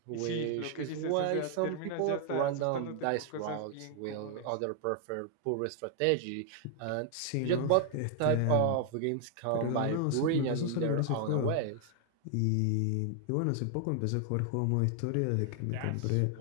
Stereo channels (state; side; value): different; both; correlation 0.00